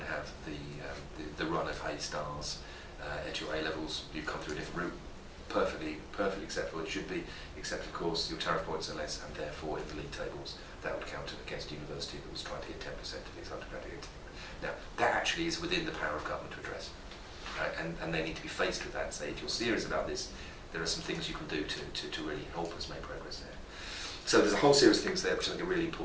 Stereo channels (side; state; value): both; identical; correlation 1.00